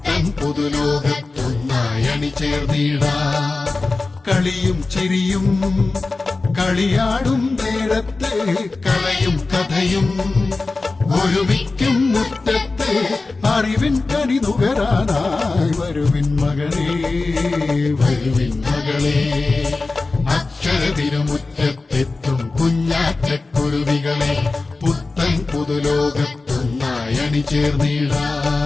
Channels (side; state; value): right; quieter; 3.6 dB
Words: പുതുലോകത്തൊന്നായി അണിചേർന്നിടാം. കളിയും ചിരിയും കളിയാടും നേരത്തെ കലയും കഥയും ഒരുമിക്കും മുറ്റത്തെ അറിവിൻ കനി നുകരാനായി വരുവിൻ മകനേ, വരുവിൻ മകളെ. അക്ഷരതിരുമുറ്റത്തെത്തും കുഞ്ഞാറ്റക്കുരുവികളെ പുത്തൻ പുതുലോകത്തൊന്നായി അണിചേർന്നിടാം.